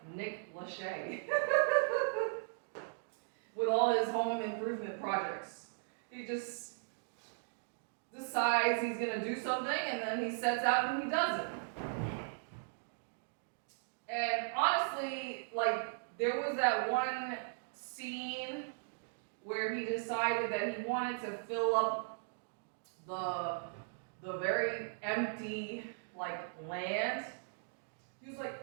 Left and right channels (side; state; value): left; silent; digital silence